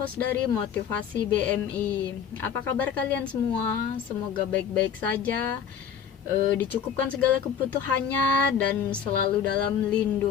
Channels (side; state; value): right; quieter; 7.8 dB